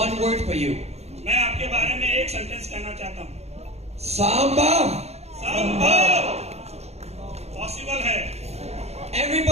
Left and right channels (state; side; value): late; left; 0.31 ms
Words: word for you. मैं आपके बारे में एक सेंटेंस कहना चाहता हूँ, Sambhav. संभव पॉसिबल है।